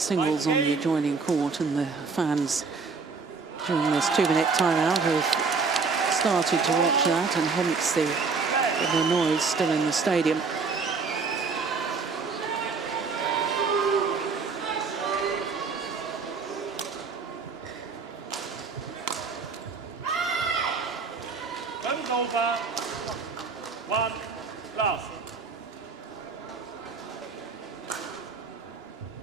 singles on the adjoining court, and the fans during this 2-minute timeout have started to watch that, and hence the noise still in the stadium. Service over. 1 last.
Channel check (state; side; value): quieter; left; 4.8 dB